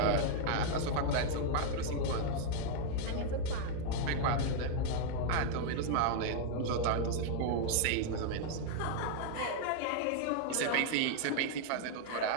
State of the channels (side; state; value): both; different; correlation -0.01